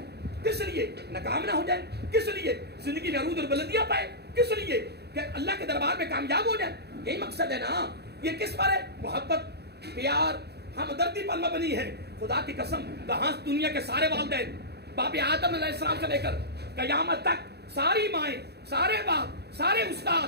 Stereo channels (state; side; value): late; left; 0.48 ms